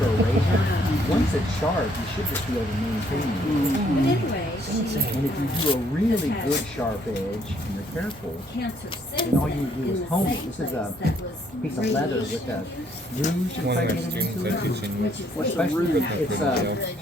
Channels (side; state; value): both; normal; correlation 0.67